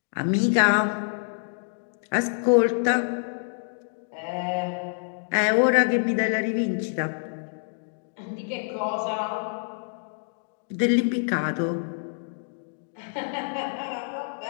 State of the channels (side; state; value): right; silent; digital silence